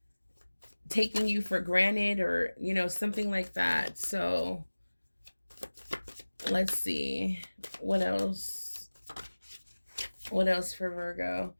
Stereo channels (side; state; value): both; inverted; correlation -1.00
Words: taking you for granted, or, something like that. So let's see what else. What else for Virgo?